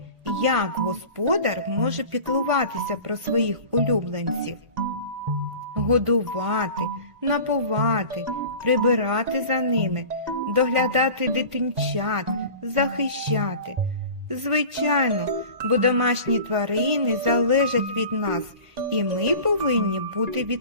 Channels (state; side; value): late; left; 1.9 ms